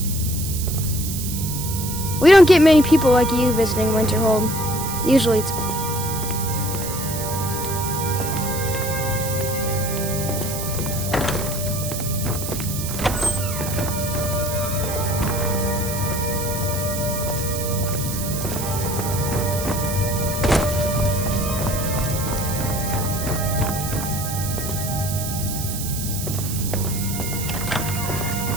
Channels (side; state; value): right; noise; hiss, 6 dB below the sound